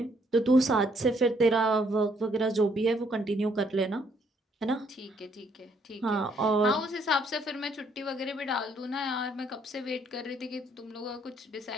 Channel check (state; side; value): normal; both; correlation 0.68